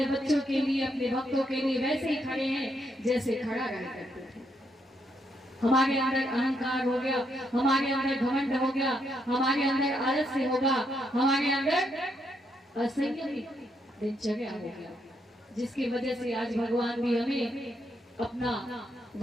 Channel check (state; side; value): normal; both; correlation 0.77